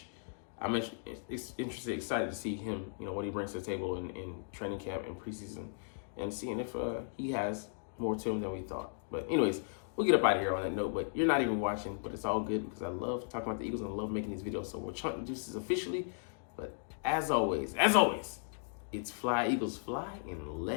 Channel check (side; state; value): right; silent; digital silence